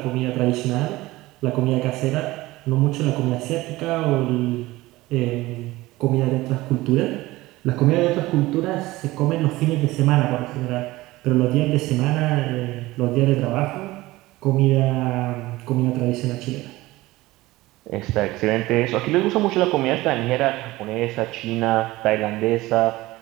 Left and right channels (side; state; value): left; quieter; 18.8 dB